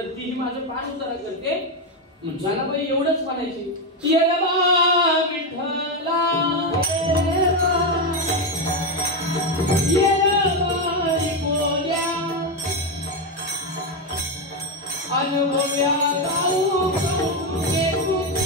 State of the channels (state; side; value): normal; both; correlation 0.08